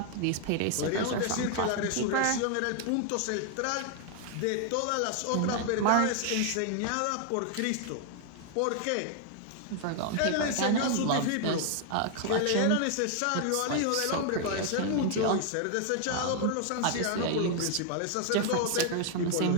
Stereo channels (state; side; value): different; both; correlation 0.00